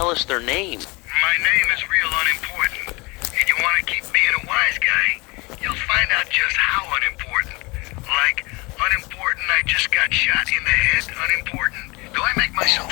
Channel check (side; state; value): right; quieter; 25.9 dB